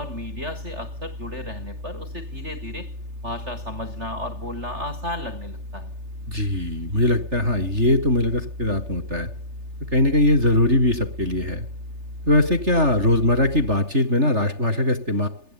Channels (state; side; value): late; left; 3.3 ms